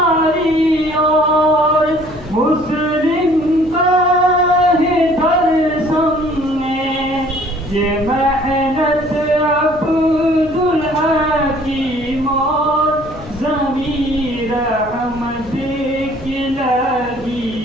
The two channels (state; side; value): noise; left; hum, 17 dB below the sound